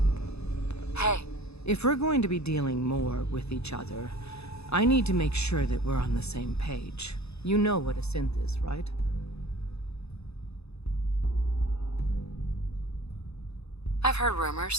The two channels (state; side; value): late; right; 0.79 ms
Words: Hey, If we're going to be dealing more with each other, I need to make sure that we're on the same page. You know what a synth is, right? I've heard